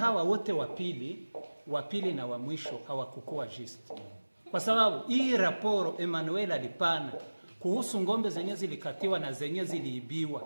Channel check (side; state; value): both; inverted; correlation -1.00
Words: wote wapili na wa mwisho hawakukuwa juste. Kwa sababu hii raporo Emmanuel alipana kuhusu ngombe zenye zilikatiwa na zenye